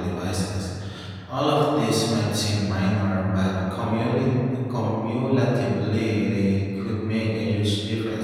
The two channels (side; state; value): both; identical; correlation 1.00